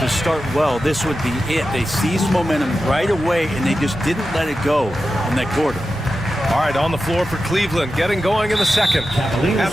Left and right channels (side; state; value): both; normal; correlation 0.92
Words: start well, this would be it. They seized momentum right away, and they just didn't let it go in that quarter. All right, on the floor for Cleveland, getting going in the second.